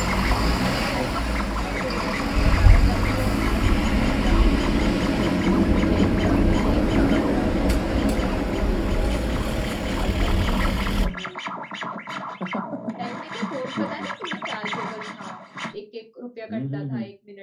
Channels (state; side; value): identical; both; correlation 1.00